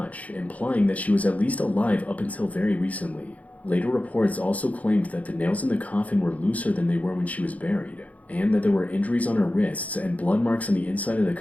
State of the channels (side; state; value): right; late; 0.070 ms